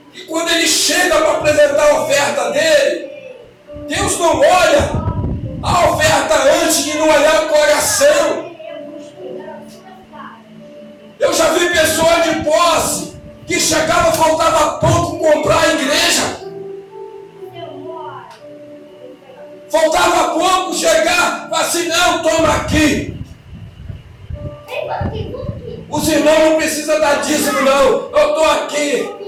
E quando ele chega para apresentar a oferta dele, Deus não olha a oferta antes de não olhar o coração. Eu já vi pessoas de posse que chegava, faltava pouco comprar a igreja. Faltava pouco chegar, assim: não, toma aqui. Os irmãos não precisam dar dízimo não, eu estou aqui.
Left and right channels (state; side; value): identical; both; correlation 1.00